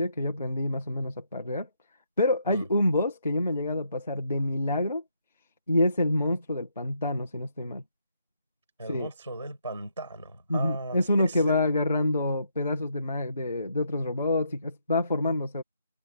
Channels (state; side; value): inverted; both; correlation -0.75